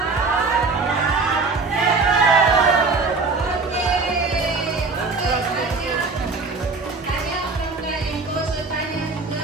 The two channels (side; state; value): left; quieter; 4.1 dB